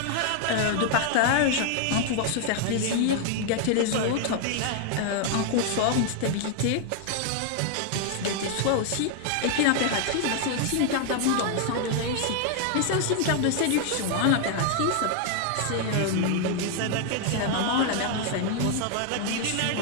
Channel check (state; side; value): different; both; correlation 0.00